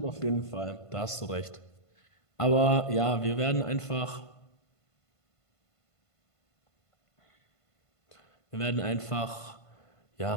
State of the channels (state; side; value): late; right; 1.5 ms